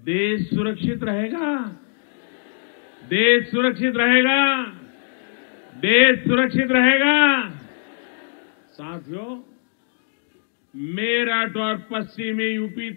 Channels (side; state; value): right; silent; digital silence